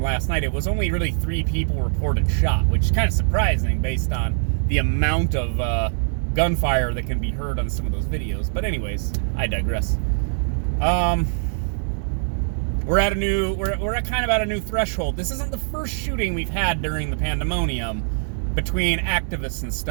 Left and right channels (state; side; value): silent; left; digital silence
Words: last night, it was only really 3 people reported shot, which is kind of surprising based on the amount of gunfire that can be heard on some of those videos. But anyways, I digress. We're at kind of at a new threshold. This isn't the first shooting we've had during the Pandemonium between activists and